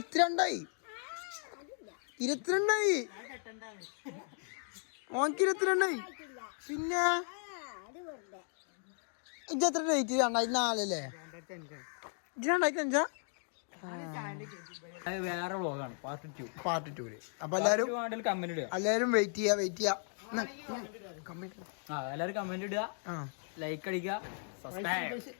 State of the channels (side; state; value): right; silent; 54 dB below the other